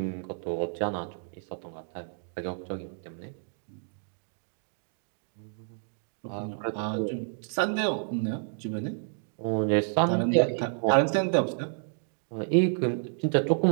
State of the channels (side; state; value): left; silent; digital silence